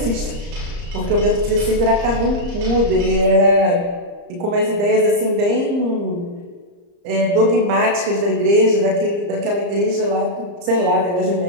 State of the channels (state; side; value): late; left; 34 ms